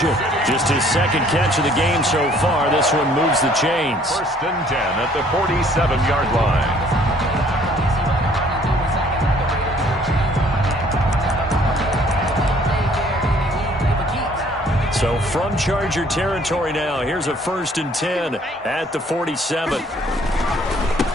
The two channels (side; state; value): both; normal; correlation 0.59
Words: Just his 2nd catch of the game so far. This one moves the chains. 1st and 10 at the 47-yard line. So from Charger territory now, here's a 1st and 10 at the 47.